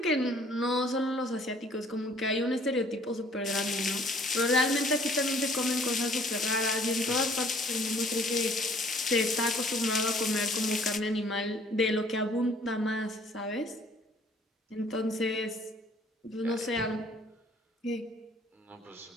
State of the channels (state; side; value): normal; both; correlation 0.57